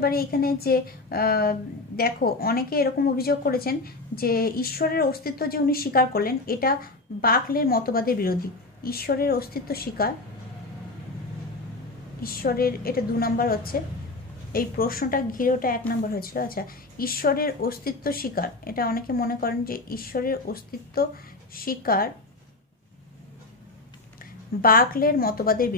পারি এখানে যে দেখো অনেকে এরকম অভিযোগ করেছেন যে ঈশ্বরের অস্তিত্ব যে উনি স্বীকার করলেন এটা বাকলের মতবাদের বিরোধী। ঈশ্বরের অস্তিত্ব স্বীকার, ঈশ্বরের, এটা 2 নম্বর হচ্ছে, এই প্রশ্নটা ঘিরে ওটা 1 নম্বর হয়েছিল। আচ্ছা, ঈশ্বরের অস্তিত্ব স্বীকার, এটা অনেকে মনে করেন যে ঈশ্বরের অস্তিত্ব স্বীকার বাকলের মতবাদের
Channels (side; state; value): right; quieter; 3.2 dB